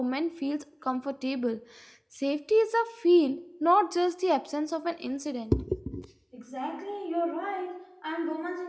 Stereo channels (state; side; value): identical; both; correlation 1.00